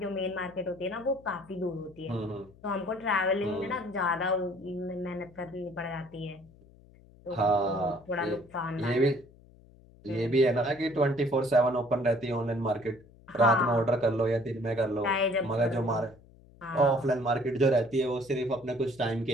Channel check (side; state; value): left; noise; hum, 25 dB below the sound